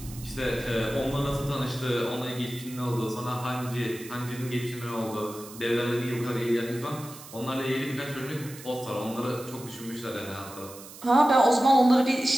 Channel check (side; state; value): right; noise; hiss, 16 dB below the sound